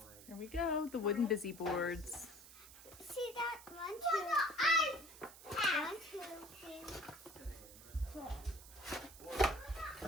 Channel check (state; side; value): noise; right; hiss, 17 dB below the sound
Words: Here we go, the wooden busy boards. See that? 1, 2, 3.